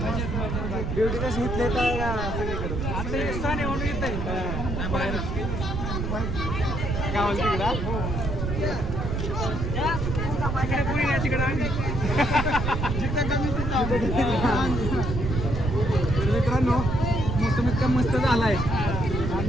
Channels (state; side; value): noise; right; rumble, 2 dB below the sound